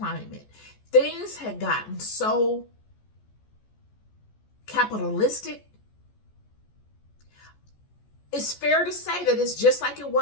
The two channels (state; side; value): late; right; 14 ms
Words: things had gotten so capitalistic. It's fair to say that it's just like it